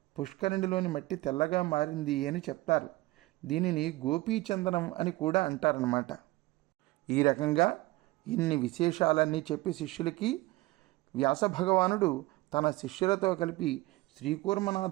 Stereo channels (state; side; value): quieter; left; 20.1 dB